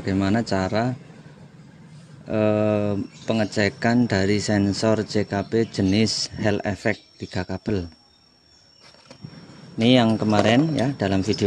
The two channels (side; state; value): both; identical; correlation 1.00